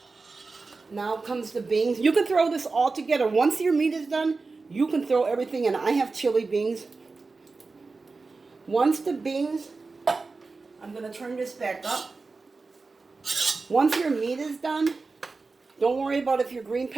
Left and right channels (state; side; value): quieter; left; 4.0 dB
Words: Now comes the beans. You can throw this all together. Once your meat is done, you can throw everything in. I have chili beans. Once the beans, I'm going to turn this back up. Once your meat is done, don't worry about if your green